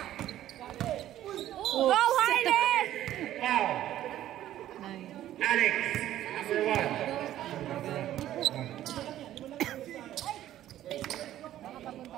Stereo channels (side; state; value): left; quieter; 12.8 dB